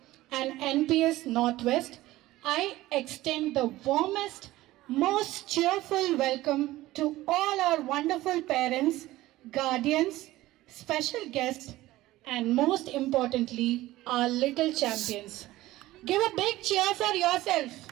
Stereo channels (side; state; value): left; quieter; 16.9 dB